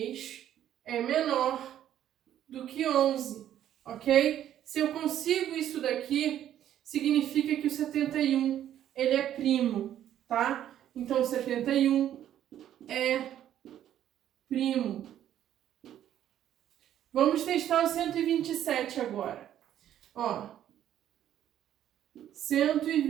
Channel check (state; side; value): quieter; left; 11.2 dB